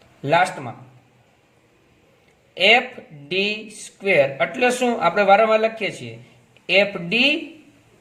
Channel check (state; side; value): identical; both; correlation 1.00